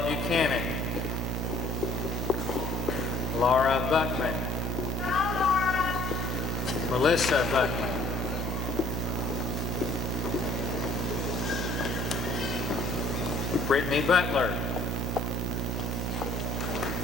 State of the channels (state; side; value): normal; both; correlation 0.54